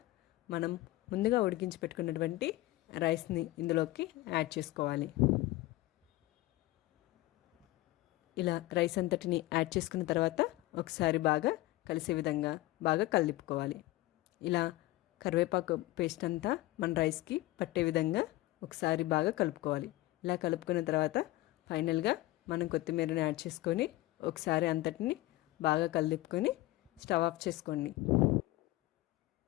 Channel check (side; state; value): right; quieter; 18.1 dB